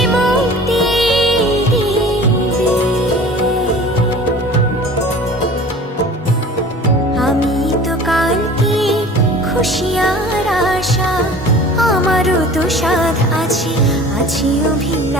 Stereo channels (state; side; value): normal; both; correlation 0.43